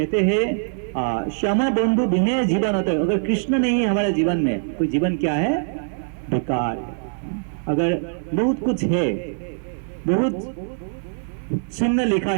हैं श्यामा बंधु बिना जीवन होता है। अगर कृष्ण नहीं है हमारे जीवन में, तो जीवन क्या है, बेकार है। अगर बहुत कुछ है, बहुत चिन्ह लिखा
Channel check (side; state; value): left; silent; 64 dB below the other